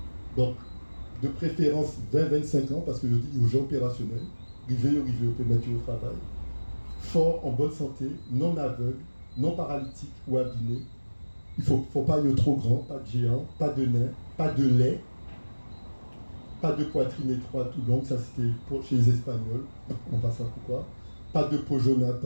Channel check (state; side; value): inverted; both; correlation -1.00